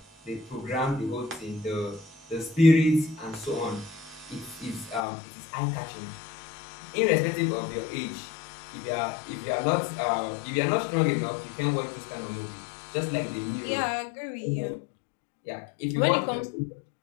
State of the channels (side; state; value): right; drops out; at 5.1 s